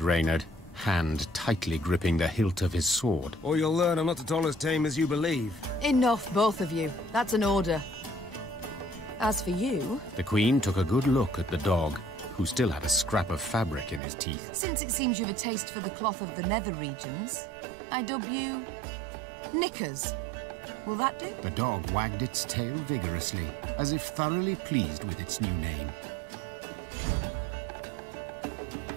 Reynard, hand tightly gripping the hilt of his sword. Or you'll learn I'm not at all as tame as you believe. Enough, both of you. That's an order. As for you... The Queen took a good look at the dog, who still had a scrap of fabric in his teeth. Since it seems you've a taste for the cloth of the nether regions, I dub you... Knickers. Will that do? The dog wagged its tail vigorously, as if thoroughly pleased with its new name.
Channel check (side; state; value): left; drops out; at 14.0 s